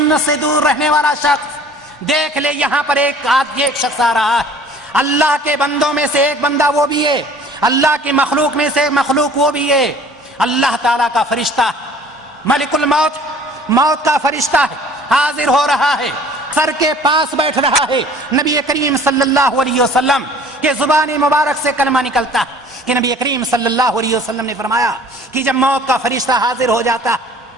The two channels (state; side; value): normal; both; correlation 0.50